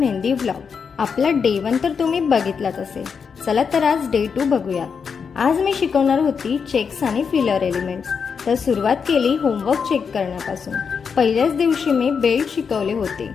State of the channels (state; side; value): quieter; right; 6.1 dB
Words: vlog. आपला day 1 तर तुम्ही बघितलाच असेल. चला तर आज डे 2 बघूयात. आज मी शिकवणार होती चेक्स आणि फिलर एलिमेंट्स. तर सुरुवात केली होमवर्क चेक करण्यापासून. पहिल्याच दिवशी मी बेल्ट शिकवले होते.